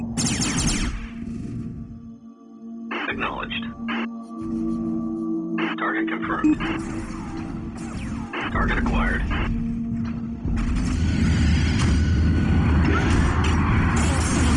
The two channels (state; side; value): identical; both; correlation 1.00